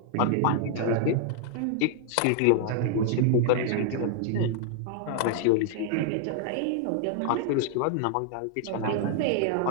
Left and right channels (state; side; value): different; both; correlation -0.01